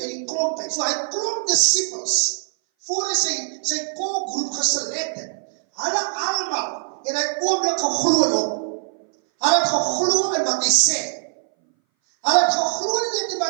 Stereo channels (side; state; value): left; silent; 60 dB below the other